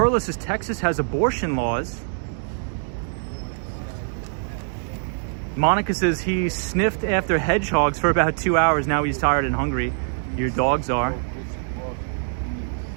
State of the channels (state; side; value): silent; left; digital silence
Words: says, Texas has abortion laws. Monica says he sniffed after hedgehogs for about 2 hours. Now he's tired and hungry. Your dogs are.